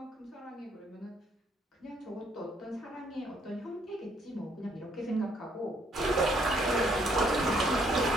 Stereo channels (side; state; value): both; normal; correlation 0.67